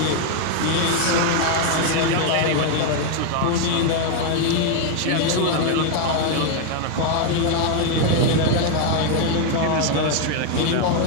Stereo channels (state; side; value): different; both; correlation 0.00